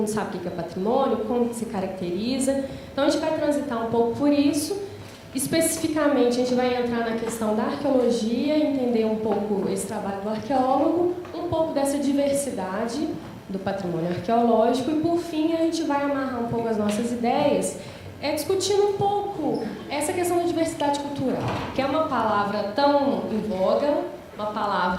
sabe o que é patrimônio, como que se caracteriza. Então, a gente vai transitar um pouco por isso. Especificamente, a gente vai entrar na questão da arqueologia, entender um pouco esse trabalho do arqueólogo, um pouco dessa diversidade do patrimônio arqueológico e, por fim, a gente vai amarrar um pouco as nossas ideias discutindo um pouco essa questão da diversidade cultural, que é uma palavra tão em voga, uma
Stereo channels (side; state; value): both; identical; correlation 1.00